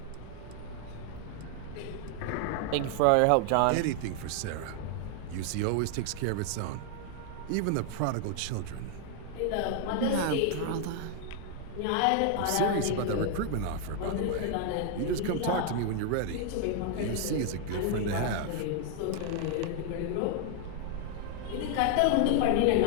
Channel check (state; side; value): different; both; correlation 0.00